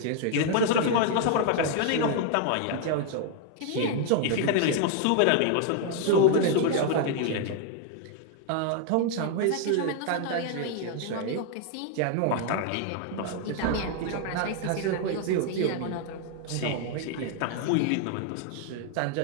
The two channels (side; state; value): both; different; correlation 0.00